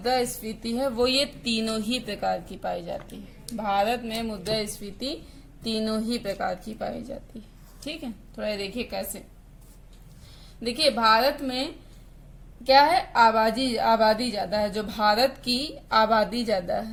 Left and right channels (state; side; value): identical; both; correlation 1.00